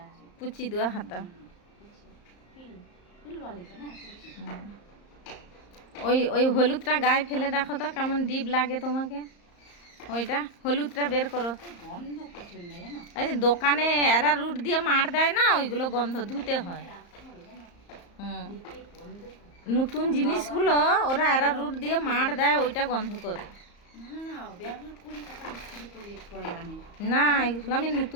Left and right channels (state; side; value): late; right; 34 ms